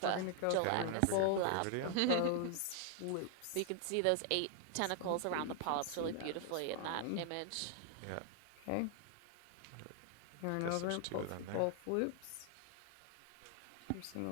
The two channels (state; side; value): different; both; correlation 0.00